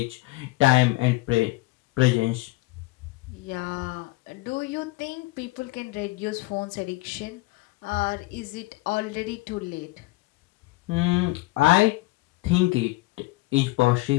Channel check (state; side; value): quieter; right; 21.1 dB